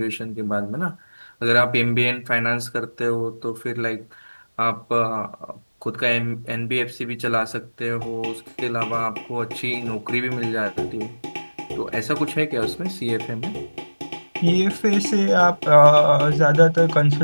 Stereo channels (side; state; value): both; inverted; correlation -1.00